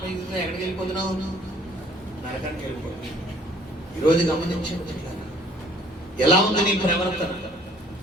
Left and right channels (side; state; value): both; normal; correlation 0.57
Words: ఎక్కడికి వెళ్ళిపోతున్నావు? నరకానికి వెళ్ళిపోతుంది. ఈరోజు గమనించండి, ఎలా ఉంది నీ ప్రవర్తన?